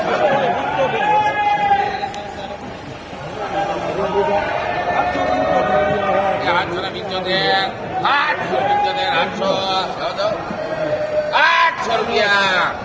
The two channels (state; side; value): identical; both; correlation 1.00